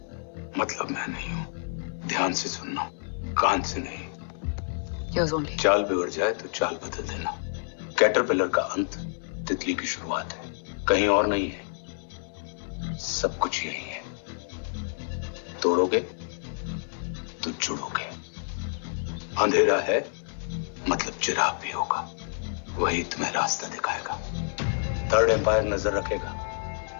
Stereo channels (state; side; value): silent; right; 59 dB below the other